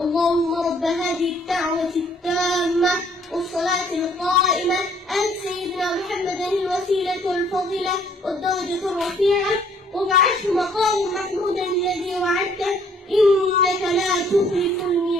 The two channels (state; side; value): normal; both; correlation 0.62